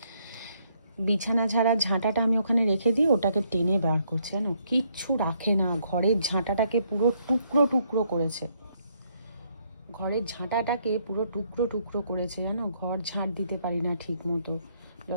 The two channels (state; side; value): inverted; both; correlation -0.71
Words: বিছানা ঝাড়ার ঝাঁটাটা আমি ওখানে রেখে দিই, ওটাকে টেনে বার করছে, জানো কিচ্ছু রাখে না। ঘরের ঝাঁটাটাকে পুরো টুকরো টুকরো করেছে, ঘরের ঝাঁটাটাকে পুরো টুকরো টুকরো করেছে, জানো। ঘর ঝাঁট দিতে পারি না ঠিক মতো,